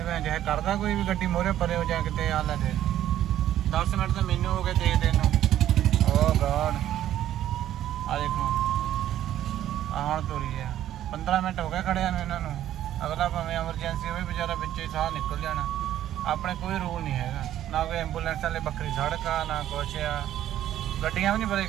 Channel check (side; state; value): left; quieter; 12.1 dB